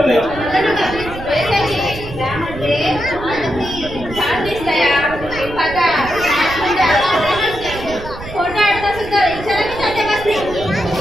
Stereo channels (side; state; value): right; noise; rumble, 12 dB below the sound